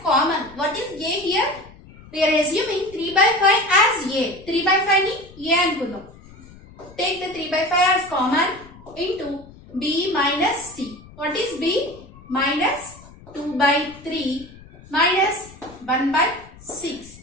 common. What is A here? We are assuming 3 by 5 as A. 3 by 5 ni A ankunno. Take the 3 by 5 as common into B minus C. What is B? Minus 2 by 3 minus 1 by 6.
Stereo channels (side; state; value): left; noise; rumble, 21 dB below the sound